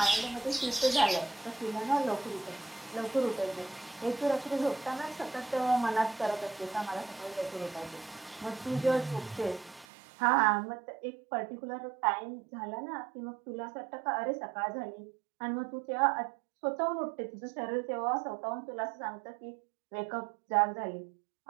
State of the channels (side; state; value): left; drops out; at 9.9 s